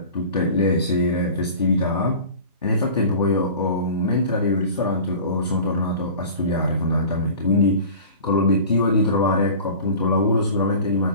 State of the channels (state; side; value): inverted; both; correlation -0.40